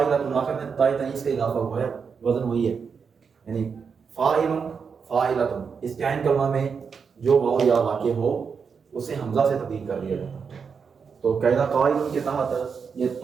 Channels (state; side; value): quieter; left; 6.0 dB